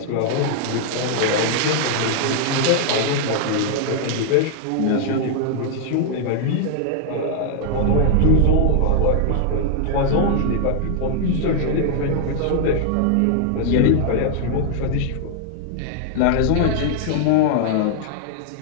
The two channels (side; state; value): both; different; correlation 0.00